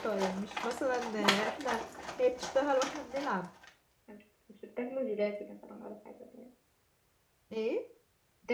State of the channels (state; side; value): identical; both; correlation 1.00